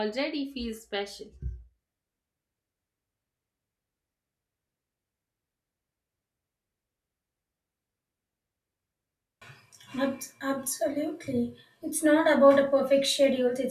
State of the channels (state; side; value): identical; both; correlation 1.00